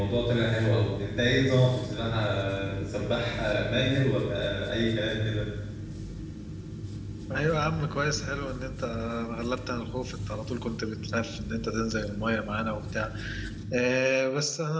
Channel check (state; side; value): identical; both; correlation 1.00